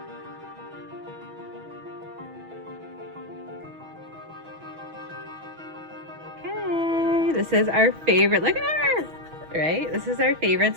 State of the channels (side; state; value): left; late; 6.2 ms